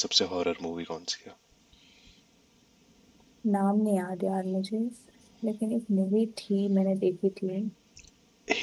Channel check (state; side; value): identical; both; correlation 1.00